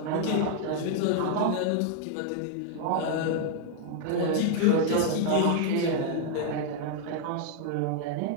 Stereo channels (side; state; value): both; different; correlation 0.00